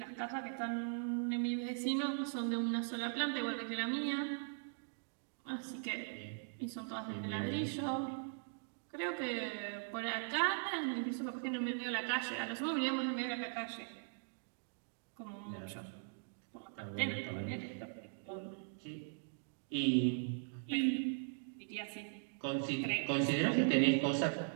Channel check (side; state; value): left; silent; digital silence